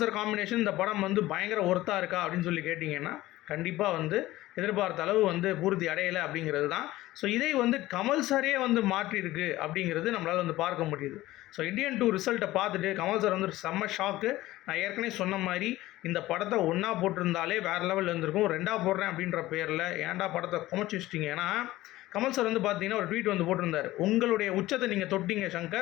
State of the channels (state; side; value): quieter; right; 16.8 dB